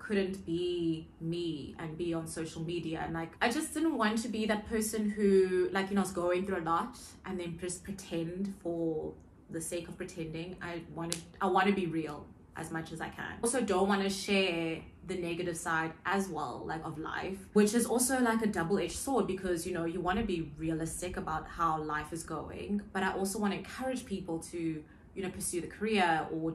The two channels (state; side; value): identical; both; correlation 1.00